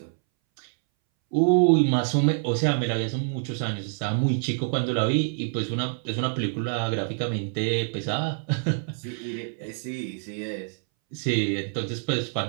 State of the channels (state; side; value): silent; left; 61 dB below the other